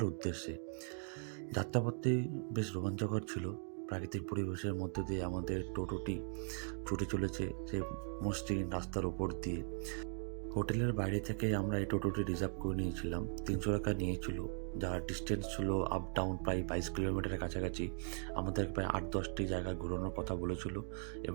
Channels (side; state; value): left; silent; 52 dB below the other